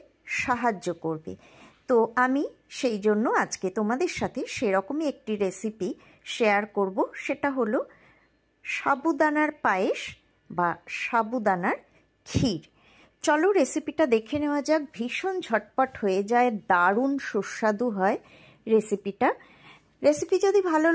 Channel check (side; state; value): both; identical; correlation 1.00